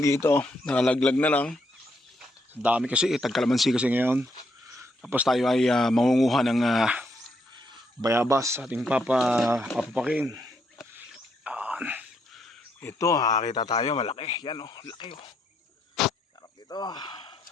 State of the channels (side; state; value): both; normal; correlation 0.76